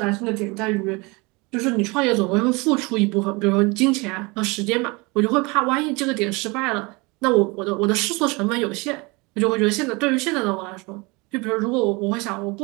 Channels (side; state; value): left; quieter; 26.5 dB